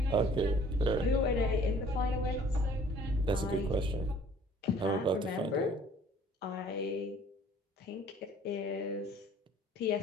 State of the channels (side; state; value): both; normal; correlation 0.54